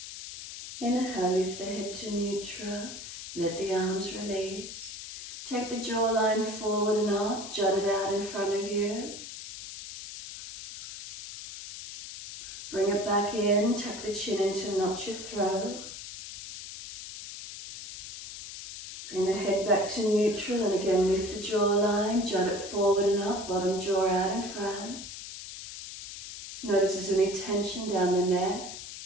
Inhale, lift the head to neutral, let the arms release. Take the jawline forward and up, jut it out in front of you. Bring it back back in, tuck the chin in to notch your throat. Bring the head back to neutral and again lift the jawline, jut it forward and up, bottom jaw out in front. Notice there's any tension down the neck.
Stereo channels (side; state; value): left; noise; hiss, 11 dB below the sound